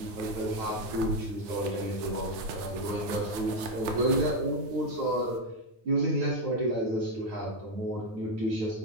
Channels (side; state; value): left; late; 9.3 ms